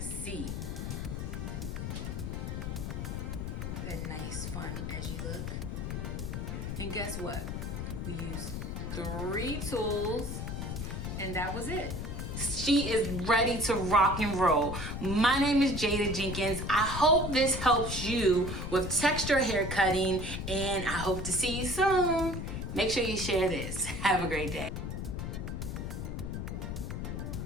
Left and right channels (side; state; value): left; noise; rumble, 4 dB below the sound